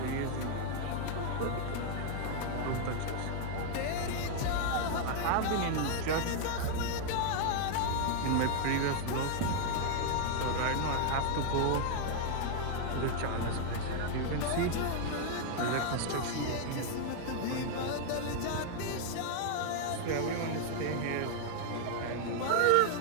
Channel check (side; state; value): both; different; correlation 0.00